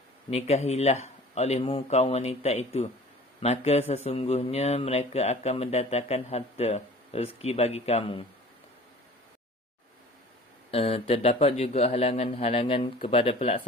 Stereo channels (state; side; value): normal; both; correlation 0.44